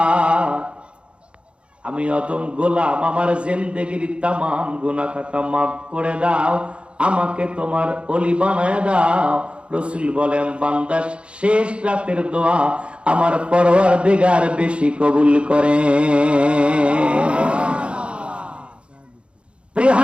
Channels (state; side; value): late; left; 0.058 ms